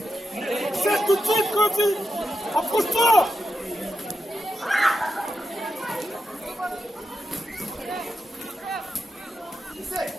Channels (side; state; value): both; normal; correlation 0.88